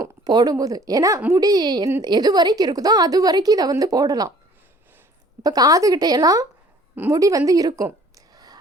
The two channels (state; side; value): normal; both; correlation 0.53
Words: போடும்போது. ஏன்னா முடி எது வரைக்கும் இருக்குதோ அது வரைக்கும் இதை வந்து போடலாம். இப்போ காதுகிட்டையெல்லாம் முடி வந்து இருக்கும்.